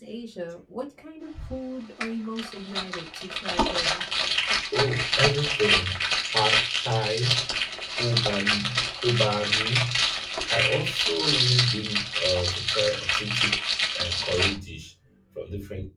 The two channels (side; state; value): both; identical; correlation 1.00